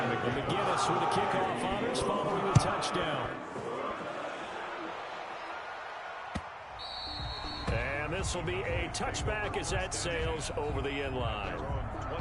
McGinnis with the kickoff honors following the touchdown. And this will be a touchback as that sails over the end line.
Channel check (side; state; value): both; identical; correlation 1.00